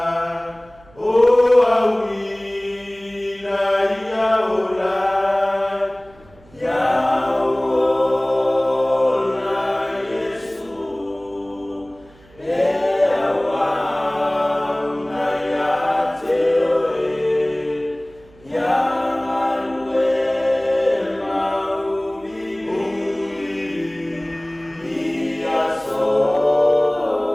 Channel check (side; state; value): right; noise; hum, 27 dB below the sound